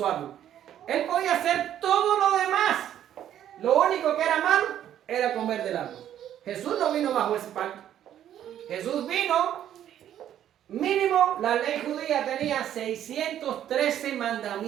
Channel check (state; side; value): quieter; left; 10.8 dB